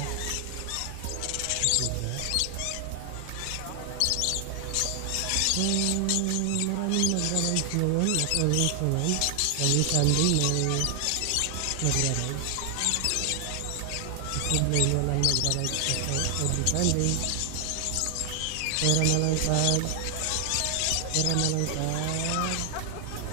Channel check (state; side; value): different; both; correlation 0.00